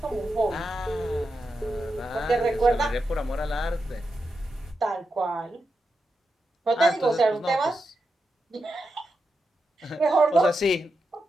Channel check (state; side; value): normal; both; correlation 0.87